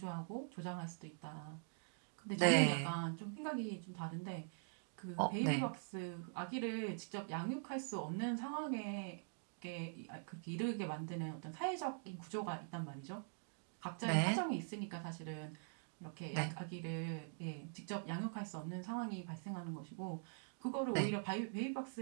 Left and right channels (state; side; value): silent; left; digital silence